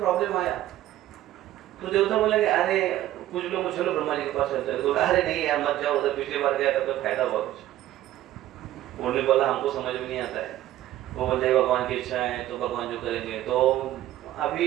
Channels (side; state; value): left; quieter; 13.8 dB